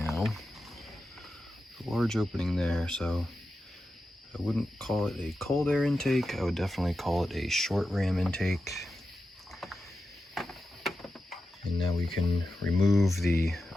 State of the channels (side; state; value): both; normal; correlation 0.90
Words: A large opening there, so I wouldn't call it a cold air intake. I would definitely call it a short ram intake. And now we can remove the,